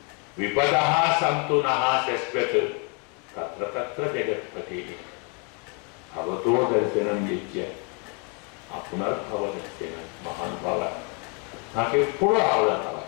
విపద సంతు నహ శశ్వత్ తత్ర తత్ర జగత్పతి భవతో దర్శనం చేయ పునర్భవ దర్శనం. మహానుభావ నాకెప్పుడు ఆపదలు రావాలి,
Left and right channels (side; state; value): right; quieter; 34.6 dB